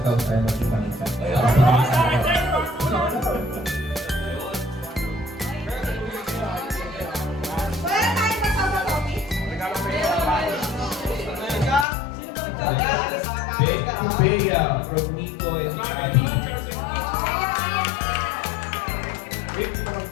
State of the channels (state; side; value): drops out; right; at 11.9 s